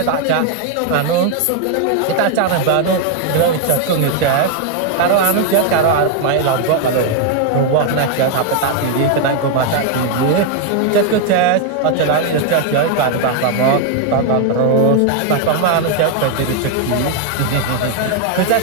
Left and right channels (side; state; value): both; different; correlation 0.00